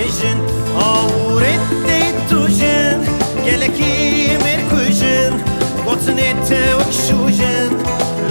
أورد دي توجن قالكي مركوجن وطنيت وكشوجن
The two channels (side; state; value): both; inverted; correlation -1.00